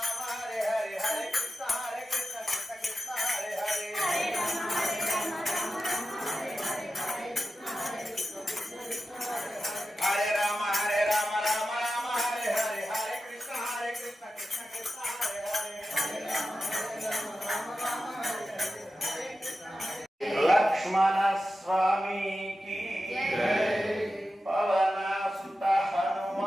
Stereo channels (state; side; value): normal; both; correlation 0.92